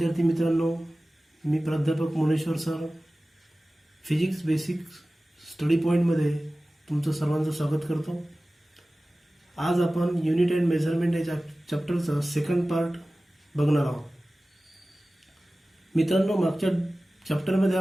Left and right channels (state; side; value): normal; both; correlation 0.97